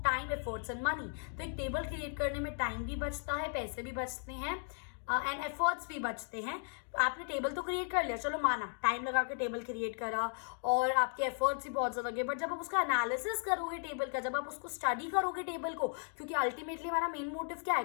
time, efforts and money. तो एक टेबल क्रिएट करने में टाइम भी बचता है, पैसे भी बचते हैं एंड एफर्ट्स भी बचते हैं। आपने टेबल तो क्रिएट कर लिया, चलो माना टाइम लगा के टेबल क्रिएट करा और आपके एफर्ट्स भी बहुत ज़्यादा लगे, बट जब आप उसका एनालिसिस करोगे टेबल का, जब आप उसको स्टडी करोगे टेबल को, क्योंकि अल्टीमेटली हमारा मेन मोटिव क्या है,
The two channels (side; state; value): right; silent; 54 dB below the other